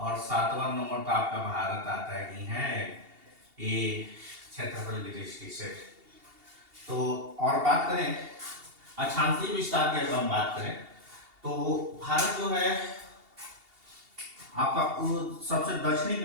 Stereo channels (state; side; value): late; left; 2.8 ms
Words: 7वां नंबर पर आपका भारत आता ही है, ये क्षेत्रफल की दृष्टि से। तो और बात करें अक्षांशीय विस्तार की, अगर हम बात करें तो भारत जो है आपका सबसे दक्षिणी की